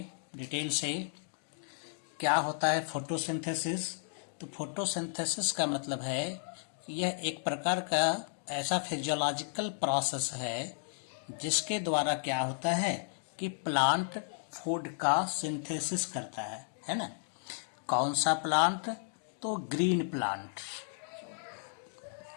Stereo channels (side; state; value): right; silent; digital silence